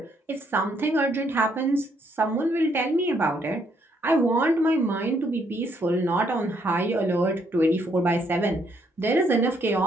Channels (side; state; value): both; normal; correlation 0.71